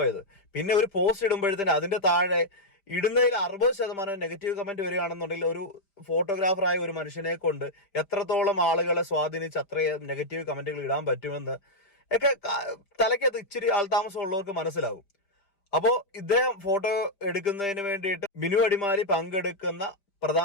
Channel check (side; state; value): right; late; 5.0 ms